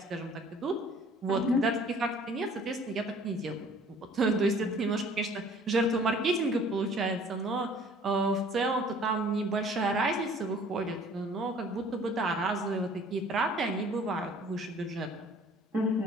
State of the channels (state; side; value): normal; both; correlation 0.53